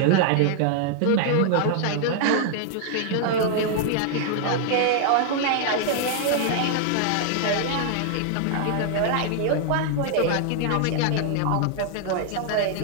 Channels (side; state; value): both; different; correlation -0.01